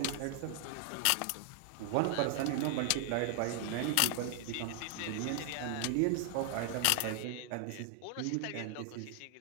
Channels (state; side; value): different; both; correlation 0.00